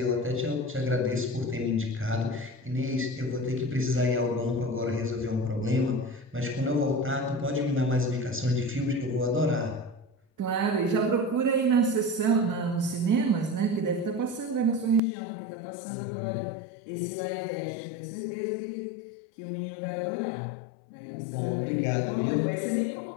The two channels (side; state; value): right; drops out; at 15.0 s